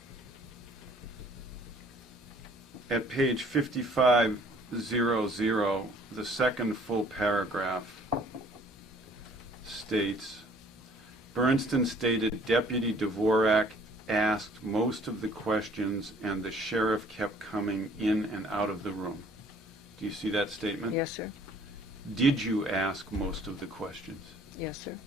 At page 5500, the second full paragraph states, Bernstein stated Deputy Dvorak asked most of the questions and the sheriff kept coming in and out of the room. Do you see that statement? Yes, sir. Did you ask most of the questions? Yes, sir.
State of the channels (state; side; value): normal; both; correlation 0.57